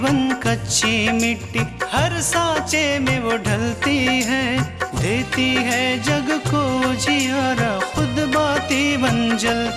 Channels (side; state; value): both; identical; correlation 1.00